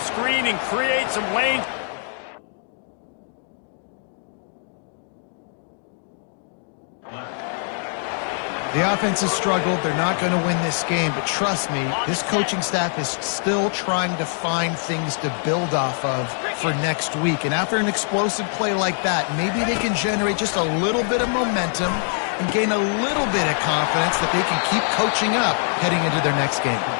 screen and create some lanes. The offense has struggled. They're not going to win this game, but trust me, this coaching staff is still trying to find things to build off of for next week. And after an explosive play like that, maybe they can generate just a little bit of momentum and gain a little bit of confidence that they can keep coaching up heading into their next game.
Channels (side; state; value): right; silent; 57 dB below the other